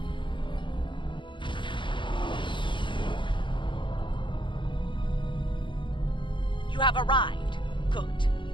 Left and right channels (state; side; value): late; right; 0.23 ms